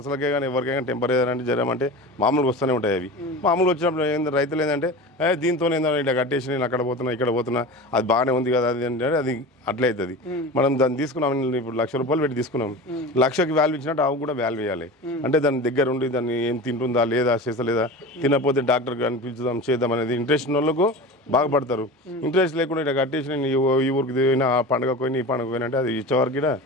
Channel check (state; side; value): normal; both; correlation 0.31